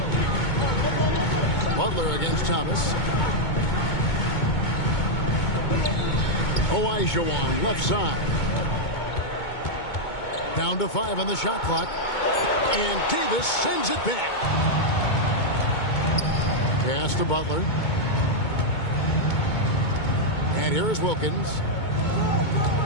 Butler against Thomas. Olajuwon left side. Down to 5 on the shot clock. And Davis sends it back. Pass to Butler. And here is Wilkins.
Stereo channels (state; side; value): late; right; 2.2 ms